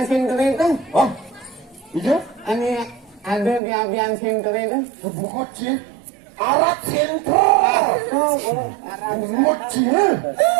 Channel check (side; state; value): left; drops out; at 3.6 s